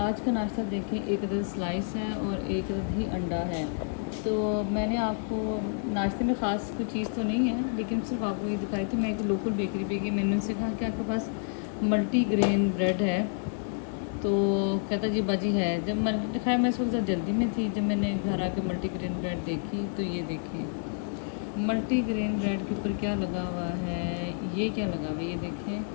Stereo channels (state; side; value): silent; right; 58 dB below the other